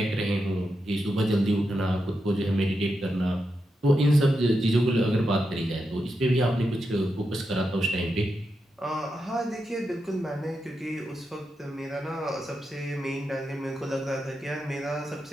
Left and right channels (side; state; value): both; normal; correlation 0.87